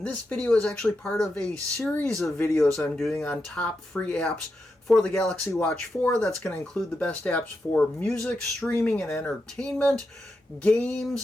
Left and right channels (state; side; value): normal; both; correlation 0.86